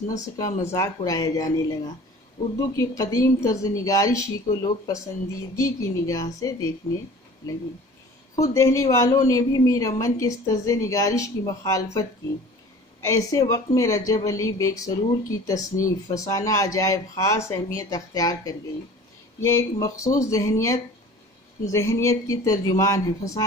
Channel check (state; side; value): normal; both; correlation 0.44